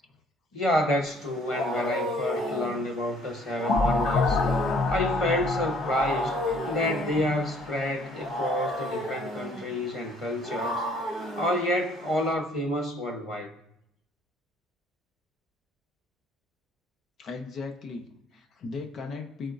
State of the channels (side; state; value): both; normal; correlation 0.60